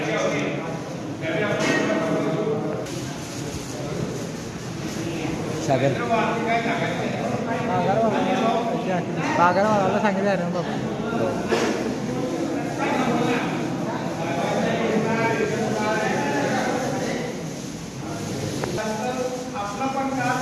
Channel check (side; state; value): both; identical; correlation 1.00